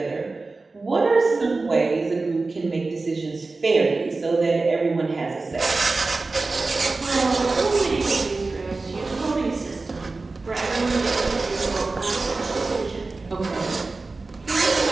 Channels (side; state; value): left; quieter; 3.6 dB